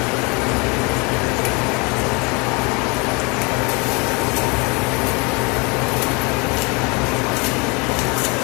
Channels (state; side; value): quieter; right; 29.1 dB